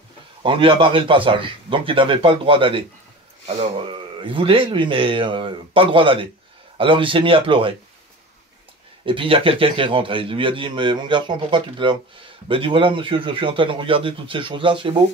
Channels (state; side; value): normal; both; correlation 0.35